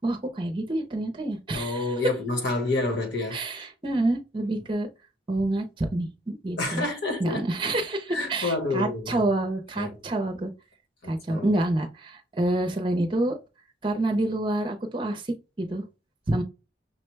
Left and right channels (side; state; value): both; normal; correlation 0.67